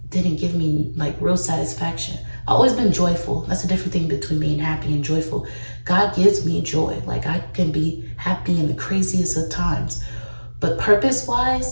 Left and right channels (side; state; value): both; inverted; correlation -1.00